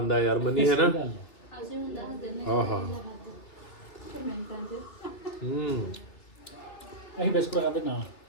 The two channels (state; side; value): late; right; 3.0 ms